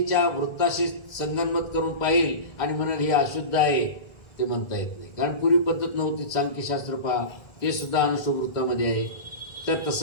वृत्ताशी संगनमत करून पाहिल आणि म्हणाल हे अशुद्ध आहे, ते म्हणता येत नाही. कारण पूर्वी पद्धत नव्हती. सांख्यशास्त्र पहा, ते सुद्धा अनुष्टुप वृत्तामध्ये आहे. तर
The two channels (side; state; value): right; late; 1.7 ms